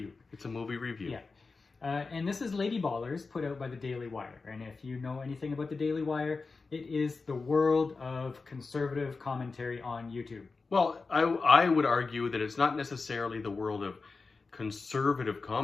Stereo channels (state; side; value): quieter; right; 4.2 dB